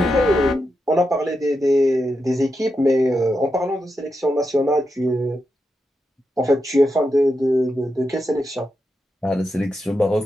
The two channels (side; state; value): both; normal; correlation 0.86